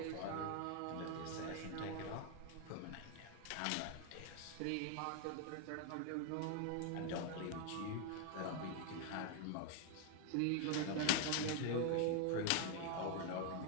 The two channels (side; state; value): both; different; correlation 0.00